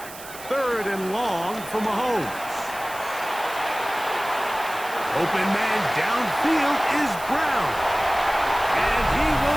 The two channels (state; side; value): noise; right; hiss, 15 dB below the sound